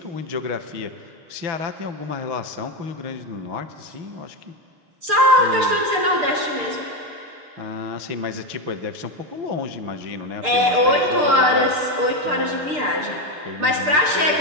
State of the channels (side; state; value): left; late; 6.7 ms